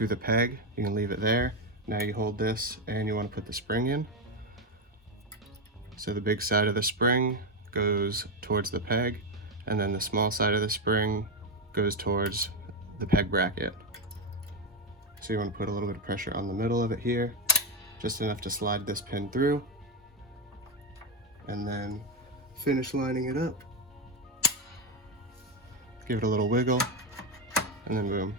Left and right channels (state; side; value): normal; both; correlation 0.08